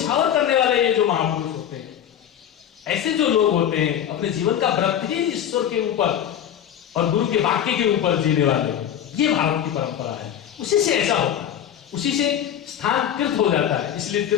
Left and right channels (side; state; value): right; quieter; 9.9 dB